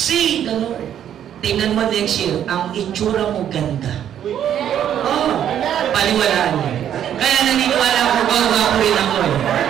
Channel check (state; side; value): quieter; left; 10.0 dB